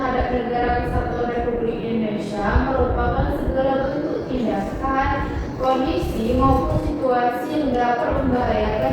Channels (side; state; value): both; identical; correlation 1.00